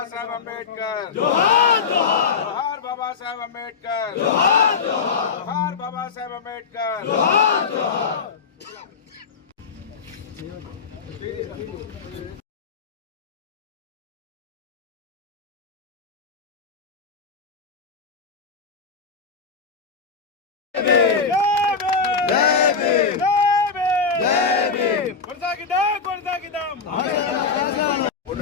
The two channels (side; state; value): right; quieter; 5.3 dB